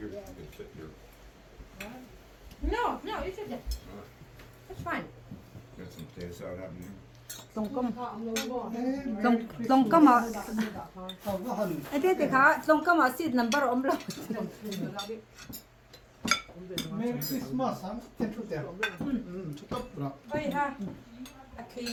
You can sit here. no you should that's fine Got some potato salad happening here. Long ka ma. Không có hình. Ate ka, long ka ma seed number om lo. Merry Christmas, ha? Ten chút đẹp. Chút tóc rồi. ơi ha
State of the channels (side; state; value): both; identical; correlation 1.00